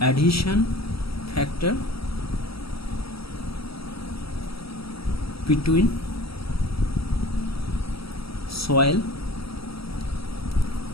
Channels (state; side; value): late; right; 0.76 ms